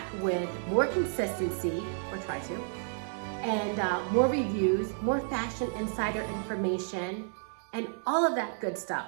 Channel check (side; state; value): left; silent; digital silence